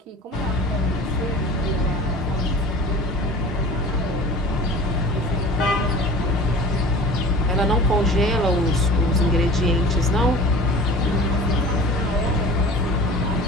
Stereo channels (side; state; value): both; normal; correlation 0.41